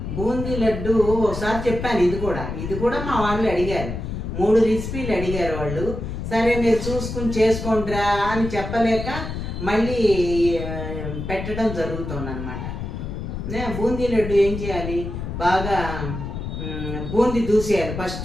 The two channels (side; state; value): left; noise; rumble, 6 dB below the sound